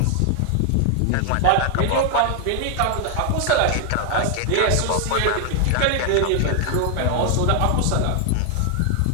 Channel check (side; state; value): both; different; correlation 0.00